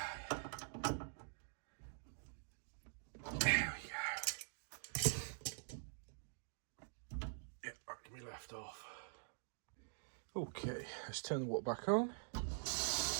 Left off. Okay, let's turn the water back on.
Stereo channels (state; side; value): silent; left; digital silence